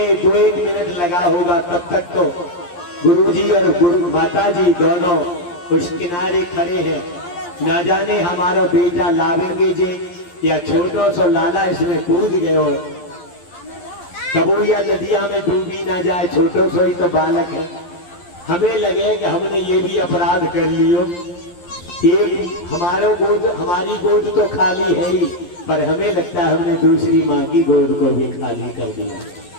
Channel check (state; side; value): late; right; 11 ms